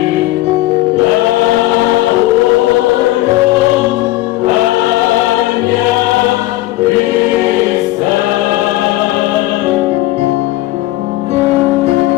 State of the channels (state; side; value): quieter; right; 17.0 dB